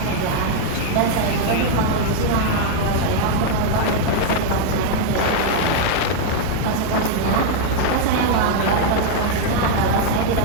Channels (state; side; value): different; both; correlation 0.00